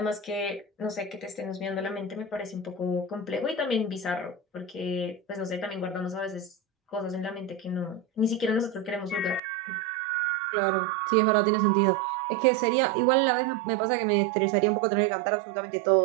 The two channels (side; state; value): left; drops out; at 9.4 s